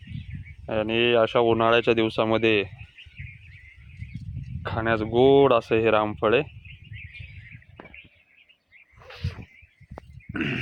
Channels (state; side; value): identical; both; correlation 1.00